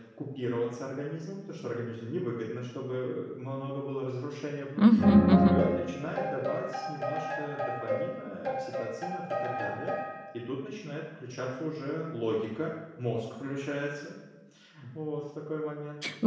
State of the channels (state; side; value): identical; both; correlation 1.00